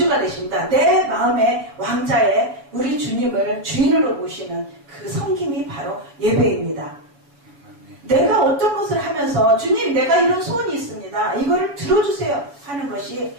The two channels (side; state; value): left; late; 7.0 ms